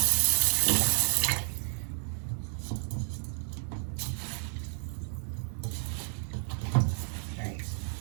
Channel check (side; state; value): left; silent; 57 dB below the other